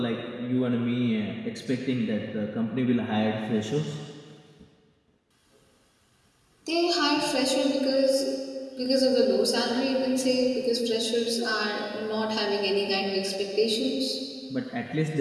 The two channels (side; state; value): both; identical; correlation 1.00